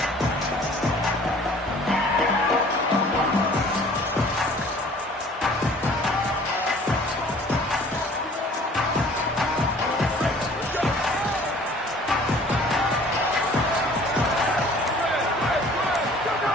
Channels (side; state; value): both; normal; correlation 0.52